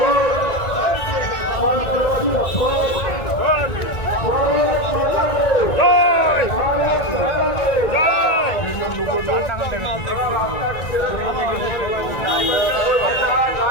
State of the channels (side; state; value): right; late; 1.9 ms